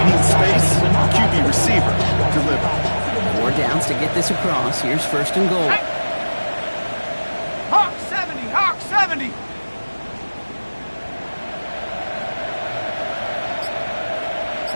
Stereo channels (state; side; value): inverted; both; correlation -1.00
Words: space, QB receiver, deliver. 4 downs to get this across. Here's first and goal. Hawk 70, Hawk 70.